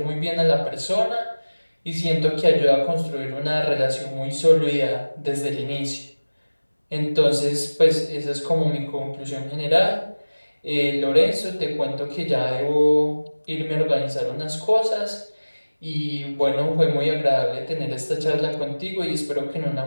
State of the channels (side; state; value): both; inverted; correlation -1.00